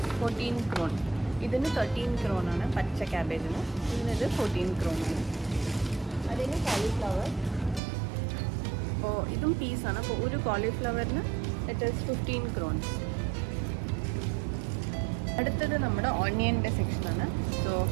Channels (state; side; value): drops out; left; at 7.8 s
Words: 14 crores. ഇതിന് 13 crores ആണ് പച്ച ക്യാബേജിന്. ഇതിനത് 14 crores ആണ്. അതിന് കോളിഫ്ലവർ. അപ്പോൾ ഇതും പീസാണ്. അപ്പോൾ ഒരു കോളിഫ്ലവറിന് ഇറ്റ് ഈസ് 15 crores. അടുത്തത് നമ്മുടെ ഓണിയൻ്റെ സെക്ഷനാണ്. സോ